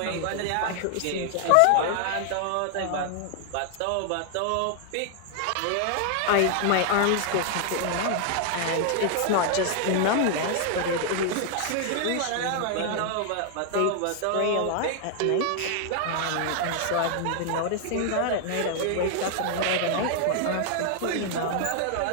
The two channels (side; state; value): both; different; correlation 0.00